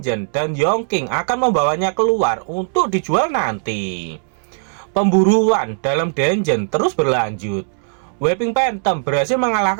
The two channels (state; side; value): silent; left; digital silence